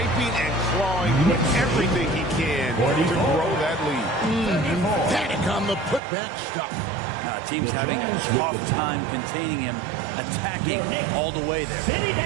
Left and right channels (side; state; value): left; drops out; at 6.0 s